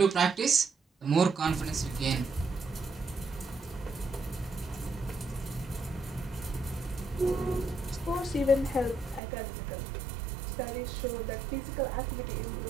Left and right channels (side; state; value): left; drops out; at 9.2 s